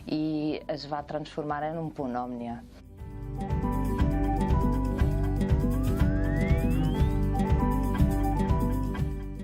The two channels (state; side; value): identical; both; correlation 1.00